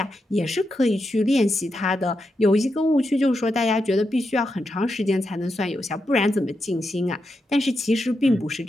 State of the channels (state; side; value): normal; both; correlation 0.86